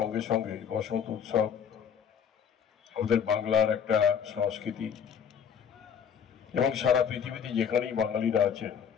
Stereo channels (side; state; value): right; quieter; 7.7 dB